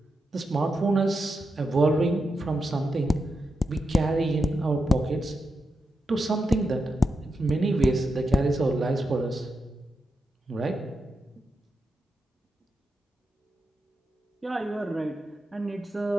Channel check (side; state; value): both; normal; correlation 0.86